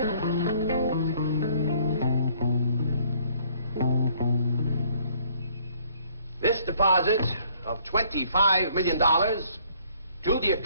deposit of $25 million to the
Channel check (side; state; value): both; inverted; correlation -0.61